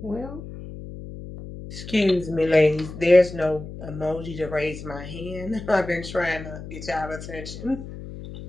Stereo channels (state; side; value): noise; left; hum, 12 dB below the sound